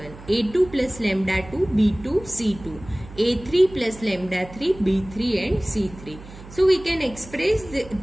a2 plus lambda 2, b2 c2, A3 plus lambda 3, B3 and C3. So we can express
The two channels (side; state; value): right; noise; hum, 17 dB below the sound